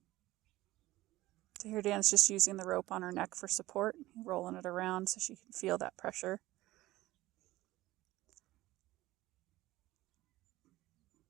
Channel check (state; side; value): quieter; left; 17.3 dB